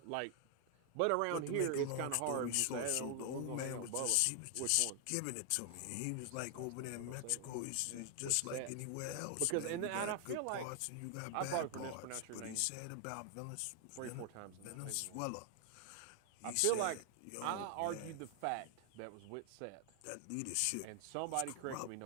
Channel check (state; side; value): different; both; correlation 0.00